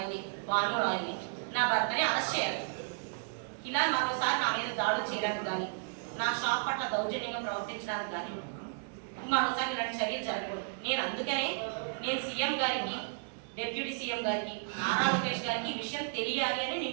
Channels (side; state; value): left; silent; digital silence